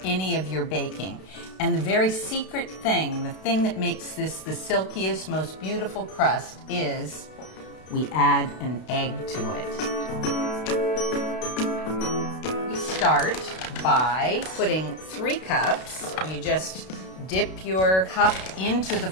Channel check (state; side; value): late; right; 32 ms